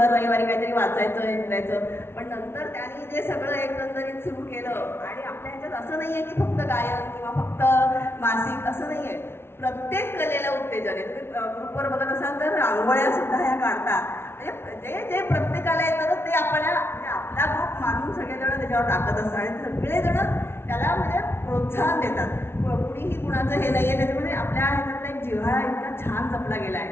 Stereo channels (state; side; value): late; right; 0.12 ms